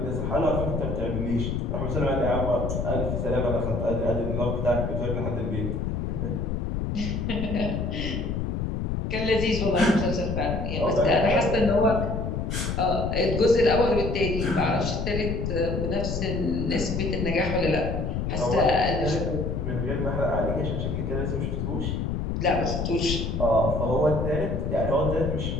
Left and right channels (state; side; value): noise; left; rumble, 1 dB below the sound